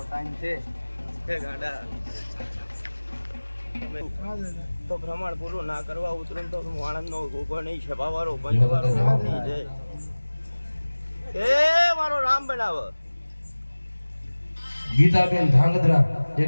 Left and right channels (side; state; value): both; inverted; correlation -1.00